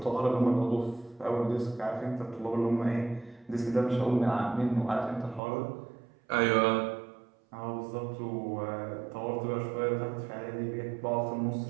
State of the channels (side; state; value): left; drops out; at 5.4 s